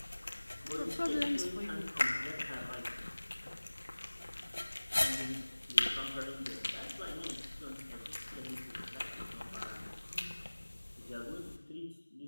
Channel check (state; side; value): inverted; both; correlation -1.00